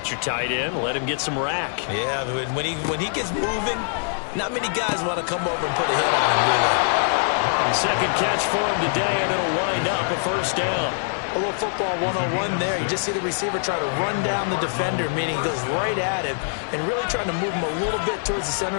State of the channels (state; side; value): silent; right; 57 dB below the other